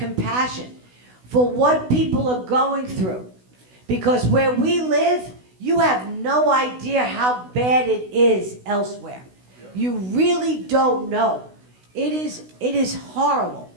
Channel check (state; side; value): late; left; 16 ms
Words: for what people are going through. Because where we live, you have no idea how bad it is elsewhere. You really don't know. It is horrible.